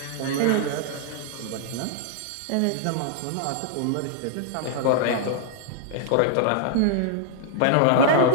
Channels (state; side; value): different; both; correlation -0.01